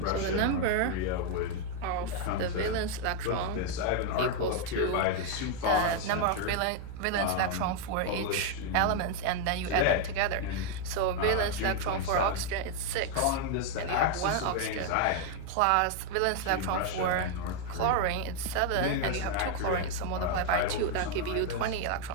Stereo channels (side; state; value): both; different; correlation 0.01